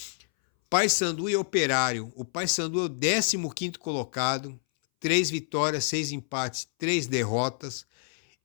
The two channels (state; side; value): silent; right; 60 dB below the other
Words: Paysandu e Operário. O Paysandu é o 15º colocado, 3 vitórias, 6 empates, 3 derrotas.